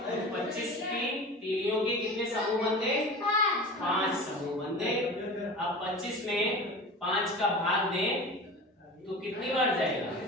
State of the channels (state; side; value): normal; both; correlation 0.34